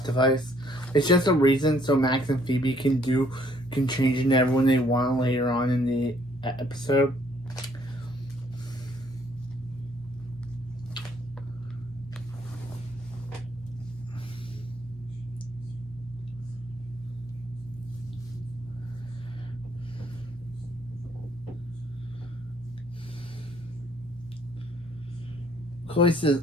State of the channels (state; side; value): normal; both; correlation 0.64